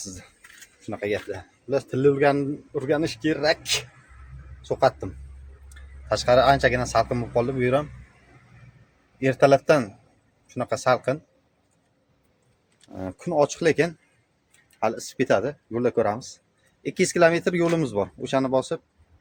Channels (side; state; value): both; identical; correlation 1.00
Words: sizni. Shunaqa gaplar. Ular tilni o'rganish kerak. So'qatdim. Tashqari anchagina salqin bo'lib qoldi bu yer ham. Ertalabdan shunaqa salqin. Kun ochiq lekin hali isib ketadi. Yo'lda ko'ramiz. 200 kilometr yo'limiz bor. O'shani bosib